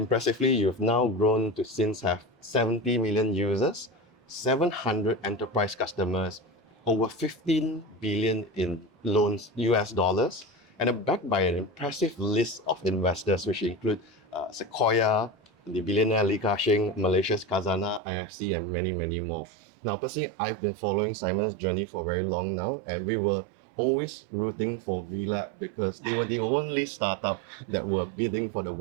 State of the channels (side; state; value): left; drops out; at 18.0 s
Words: you've now grown to since have 70 million users, 700 enterprise customers, over 15 billion in loans US dollars, and are backed by an impressive list of investors, which include Sequoia, the billionaire Li Ka-shing, Malaysia's Khazanah, IFC, and many, many more. Now, personally, I've been following Simon's journey for very long now, and we were always rooting for WeLab because they were the only startup that were bidding for the